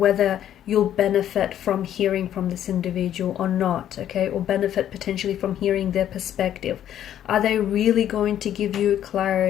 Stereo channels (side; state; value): right; quieter; 10.9 dB